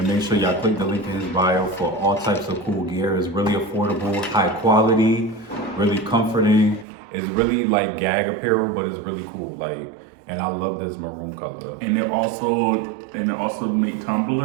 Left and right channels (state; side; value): drops out; left; at 6.9 s